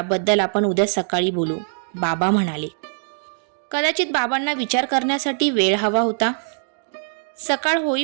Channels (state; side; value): silent; left; digital silence